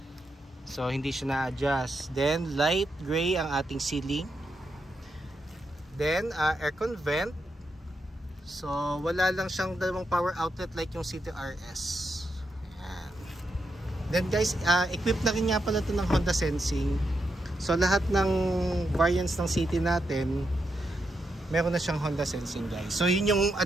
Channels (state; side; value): normal; both; correlation 0.83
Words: So hindi siya na-adjust. Then light gray ang ating ceiling. Then aircon vent. So, wala lang siyang dalawang power outlet like yung City RS. Ayan. Then guys, equipped na rin nga pala ito ng Honda Sensing. So, lahat ng variants ng City natin, meron na siyang Honda Sensing guys. So, yun yung